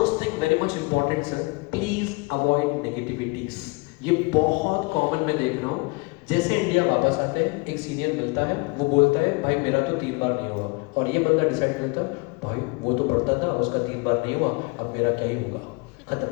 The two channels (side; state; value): right; quieter; 27.5 dB